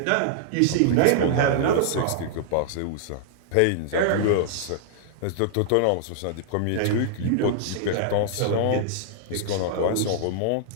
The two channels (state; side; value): different; both; correlation -0.01